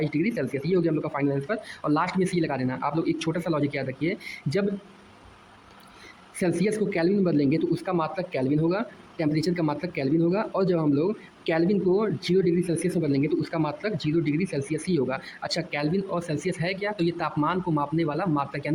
डिग्री सेल्सियस। ये हो गया हम लोग का फाइनल आंसर। और लास्ट में सी लगा देना। आप लोग एक छोटा सा लॉजिक याद रखिए, जब सेल्सियस को केल्विन में बदलेंगे तो उसका मात्रक केल्विन होगा, टेम्परेचर का मात्रक केल्विन होगा, और जब हम लोग केल्विन को 0 डिग्री सेल्सियस में बदलेंगे तो उसका मात्रक 0 डिग्री सेल्सियस ही होगा। अच्छा, केल्विन और सेल्सियस है क्या, तो ये तापमान को मापने वाला मात्रक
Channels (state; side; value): identical; both; correlation 1.00